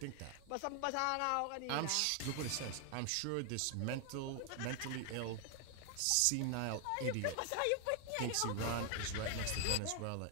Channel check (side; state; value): both; different; correlation 0.00